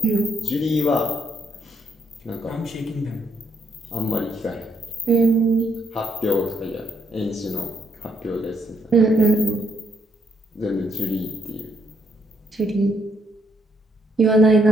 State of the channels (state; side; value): normal; both; correlation 0.74